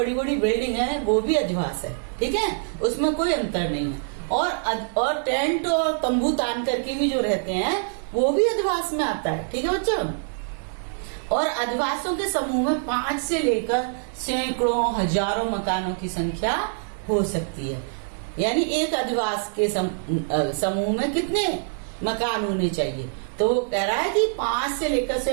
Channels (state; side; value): silent; left; 62 dB below the other